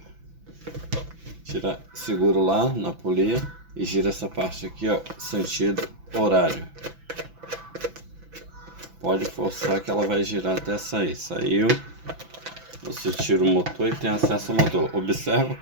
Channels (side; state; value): left; late; 6.0 ms